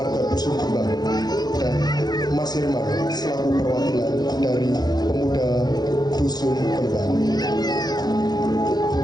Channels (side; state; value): right; late; 0.19 ms